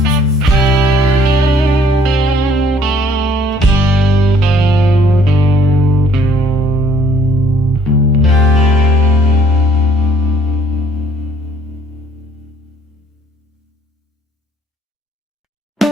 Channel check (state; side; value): normal; both; correlation 0.61